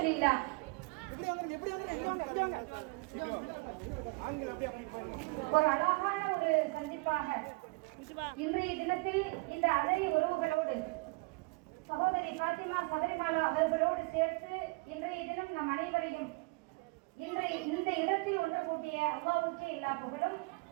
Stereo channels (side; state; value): left; quieter; 27.4 dB